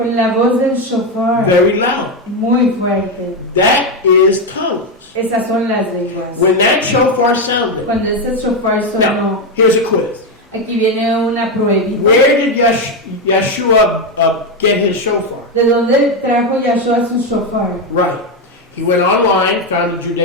la voz del shofar Very loud. muy fuerte. That is tongues. Esas son las lenguas. When that shofar sounded. Cuando ese shofar sonó, Now, here's a quiz. aquí viene una pruebita. Where did Yeshua get his shofar? ¿De dónde trajo Yahshua su shofar? Right. He went online, found a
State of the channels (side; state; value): both; normal; correlation 0.08